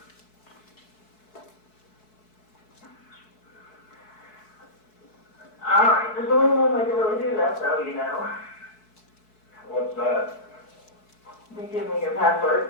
All right, there's only one way to really do that, though, you know. What's that? You give me your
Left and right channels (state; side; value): late; right; 4.6 ms